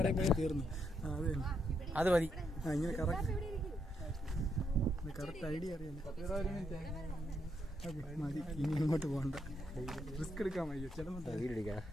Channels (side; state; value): both; normal; correlation 0.78